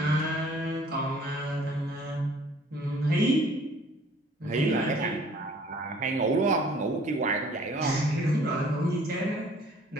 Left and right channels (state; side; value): normal; both; correlation 0.55